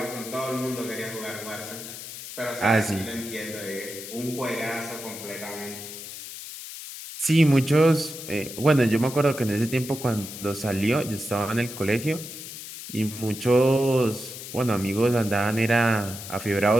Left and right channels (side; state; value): left; noise; hiss, 11 dB below the sound